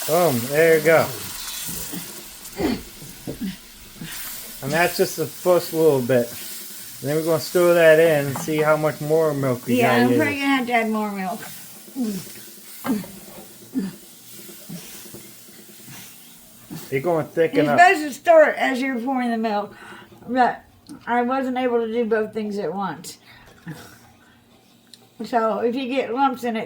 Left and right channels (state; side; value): identical; both; correlation 1.00